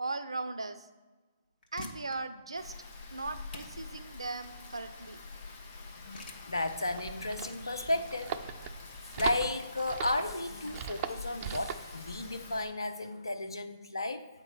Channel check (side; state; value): both; inverted; correlation -0.76